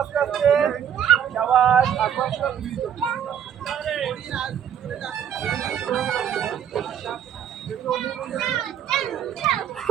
আস্তে আস্তে। শাবাশ, আস্তে আস্তে।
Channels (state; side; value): quieter; left; 9.0 dB